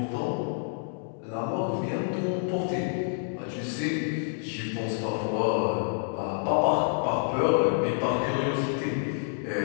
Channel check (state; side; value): silent; right; 59 dB below the other